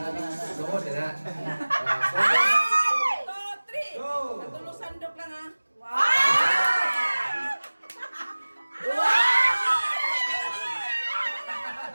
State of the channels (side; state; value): both; inverted; correlation -1.00